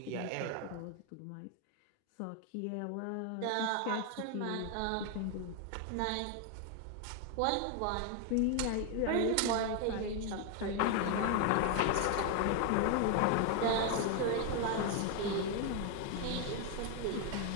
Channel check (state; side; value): different; both; correlation 0.01